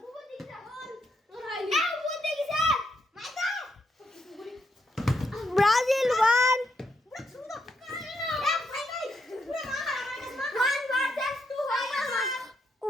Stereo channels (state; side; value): normal; both; correlation 0.79